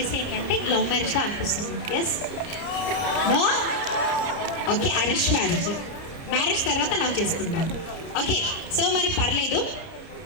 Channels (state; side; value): late; right; 30 ms